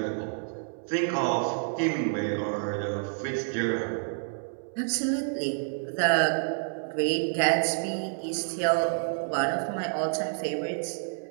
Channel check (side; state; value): left; silent; 59 dB below the other